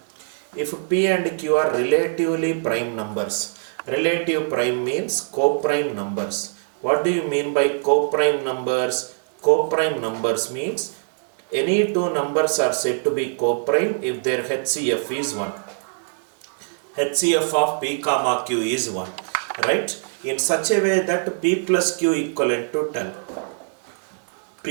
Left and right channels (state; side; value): silent; left; digital silence